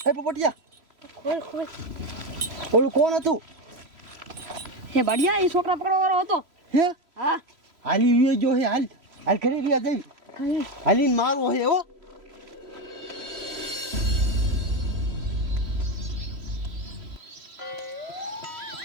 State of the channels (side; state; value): left; late; 3.0 ms